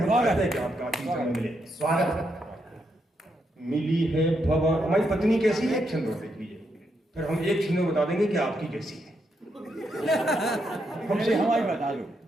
कहते हैं कि आपका आखिरी समय मिले। स्वागत। मिली है भगवान, हमारी पत्नी कैसी है, एक छंद और देख लीजिए, फिर हम एक छंद में बता देंगे कि आपकी कैसी है। हमसे हमारी बता दो।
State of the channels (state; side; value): normal; both; correlation 0.80